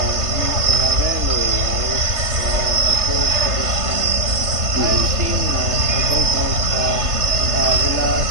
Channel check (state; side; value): late; left; 3.3 ms